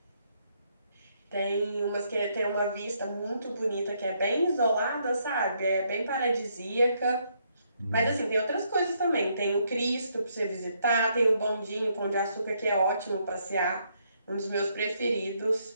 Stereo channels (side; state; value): both; inverted; correlation -0.74